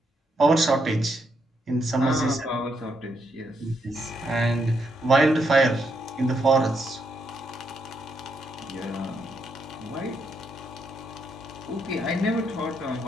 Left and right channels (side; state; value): both; normal; correlation 0.78